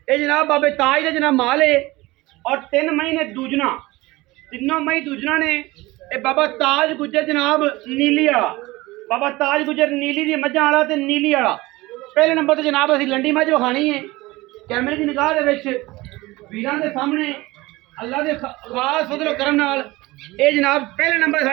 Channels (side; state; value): left; quieter; 20.5 dB